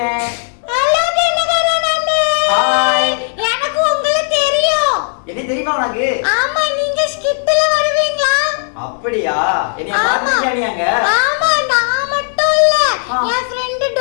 ஹலோ தினகரன் அண்ணே. ஹாய். எனக்கு உங்களை தெரியும். என்ன தெரியுமா உனக்கு? ஆமா, நீங்க ஸ்கிட்ல வருவீங்களா? அப்படியா? என்னைய பாத்துக்கியா நீ அங்க? ஆமா, நான் மட்டும் இல்ல. என் ஃப்ரெண்ட்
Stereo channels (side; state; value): right; silent; digital silence